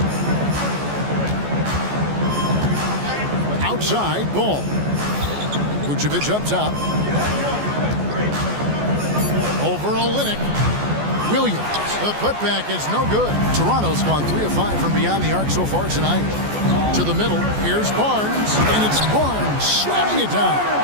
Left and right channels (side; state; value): left; late; 14 ms